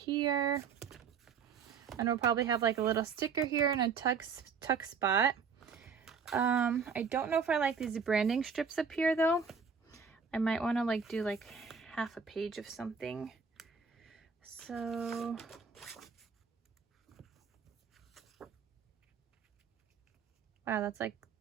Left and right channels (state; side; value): quieter; left; 5.9 dB